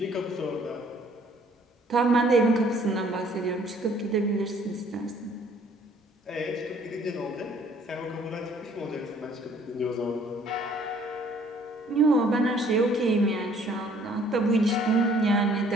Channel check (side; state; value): both; normal; correlation 0.59